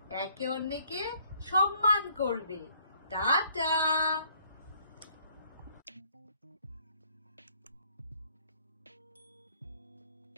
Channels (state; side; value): inverted; both; correlation -0.63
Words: একে অন্যকে সম্মান করবে। টাটা।